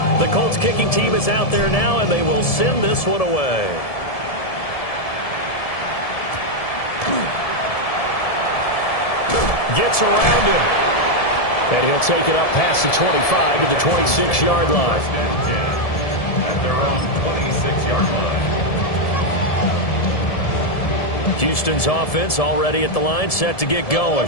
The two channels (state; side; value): late; right; 1.7 ms